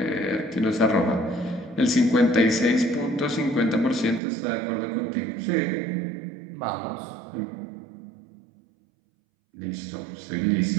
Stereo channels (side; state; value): left; drops out; at 4.2 s